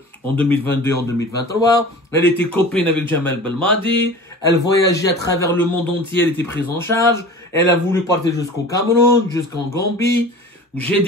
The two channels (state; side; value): normal; both; correlation 0.39